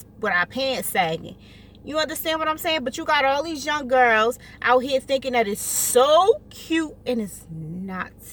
our pants sagging. You understand what I'm saying? But you got all these young girls out here thinking that it's so cute, and it's not.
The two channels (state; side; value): identical; both; correlation 1.00